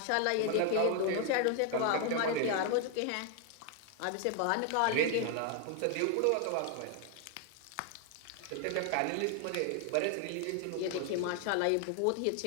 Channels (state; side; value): different; both; correlation 0.00